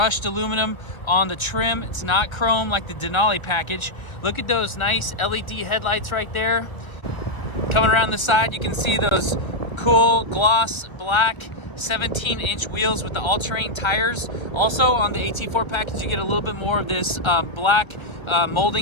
aluminum on the trim. It's not chrome like the Denali package. Look at those nice LED headlights right there. Coming around the side, you can see those cool gloss black 17-inch wheels with the all-terrain tires. Also on the AT4 package, you get a little bit more of this black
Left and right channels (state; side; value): late; right; 1.3 ms